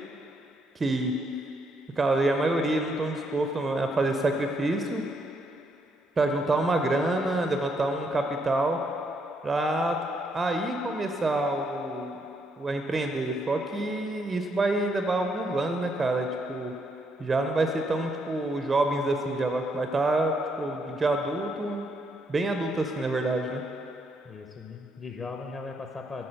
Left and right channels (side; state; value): both; normal; correlation 0.75